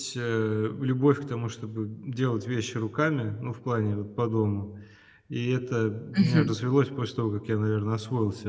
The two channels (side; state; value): both; identical; correlation 1.00